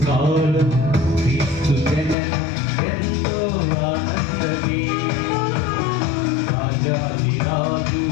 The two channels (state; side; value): drops out; right; at 2.1 s